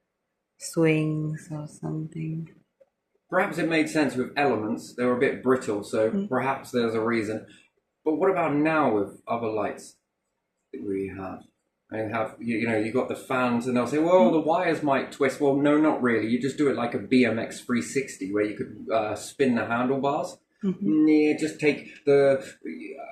swings, or something. Perhaps it made sense with elements. They were a bit brittle, so perhaps there's a reason. But what about now with other lights that we have? And you got the fans, and they'll say, well, the wires might twist. Well, no, not really. You just do it like a BMX 360, where you could spin the handlebars. Just take a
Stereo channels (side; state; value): both; identical; correlation 1.00